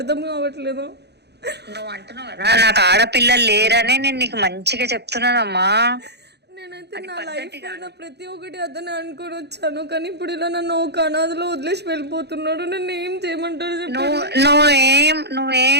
కావట్లేదు. నువ్వు అంటున్నావు కదా నాకు ఆడపిల్లలు లేరనే నేను నీకు మంచిగా చెప్తున్నానమ్మా. నేనైతే నా లైఫ్ లో ప్రతి ఒక్కటి అతనే అనుకొని వచ్చాను, కానీ ఇప్పుడు ఇలా నన్ను ఒక అనాథలో వదిలేసి వెళ్ళిపోతున్నాడు. నన్ను ఏం చేయమంటారు చెప్పండి?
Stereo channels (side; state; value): left; late; 0.48 ms